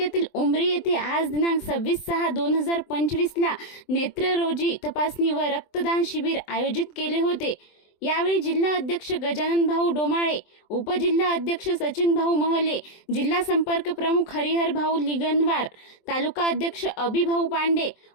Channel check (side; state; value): right; late; 24 ms